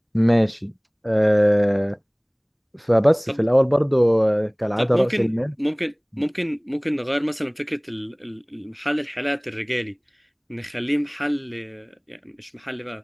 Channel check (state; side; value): identical; both; correlation 1.00